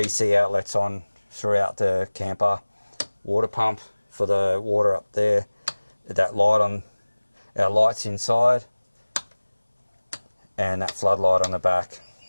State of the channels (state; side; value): inverted; both; correlation -1.00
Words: outlets on throughout the camper. Water pump for the water up there. That light on our lights inside. And that floodlight on the back.